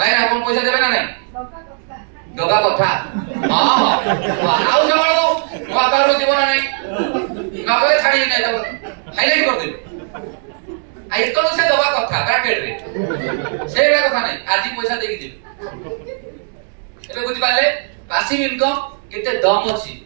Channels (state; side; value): silent; left; digital silence